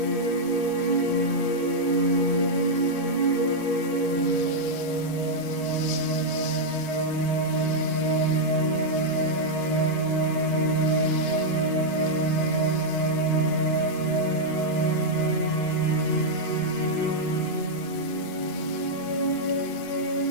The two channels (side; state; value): right; late; 8.3 ms